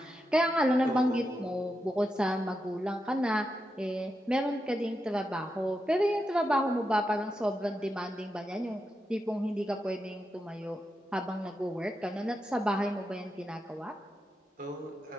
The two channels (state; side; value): normal; both; correlation 0.87